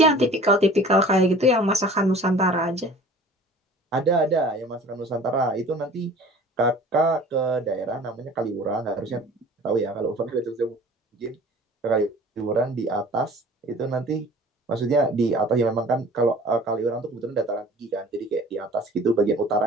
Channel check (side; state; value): both; normal; correlation 0.45